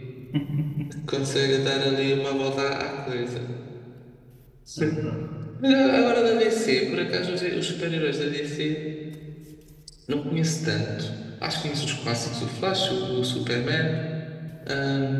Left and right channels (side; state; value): both; identical; correlation 1.00